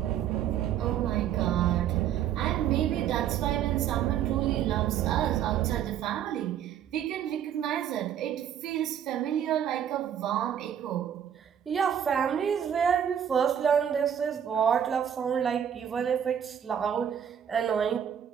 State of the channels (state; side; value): quieter; left; 9.3 dB